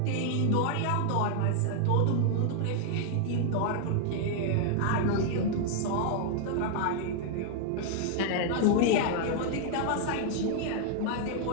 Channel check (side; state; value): both; different; correlation 0.00